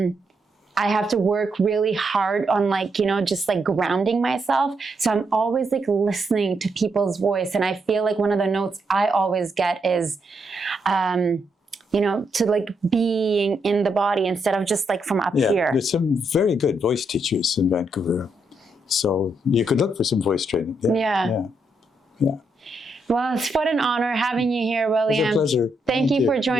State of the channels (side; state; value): both; normal; correlation 0.79